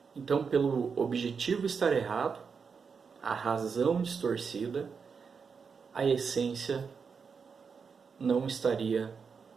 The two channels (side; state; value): left; quieter; 5.8 dB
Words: Então, pelo objetivo estar errado, a razão distorcida, a essência não estaria